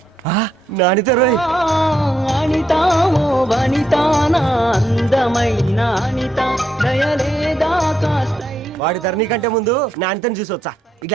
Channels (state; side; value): normal; both; correlation 0.78